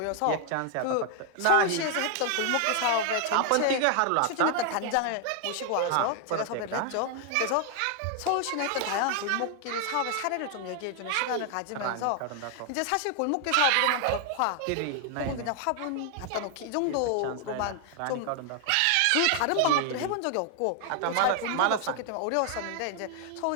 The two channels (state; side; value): different; both; correlation 0.00